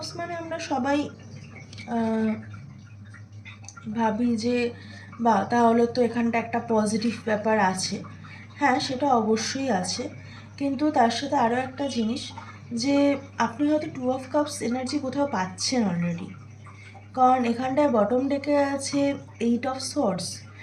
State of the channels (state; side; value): identical; both; correlation 1.00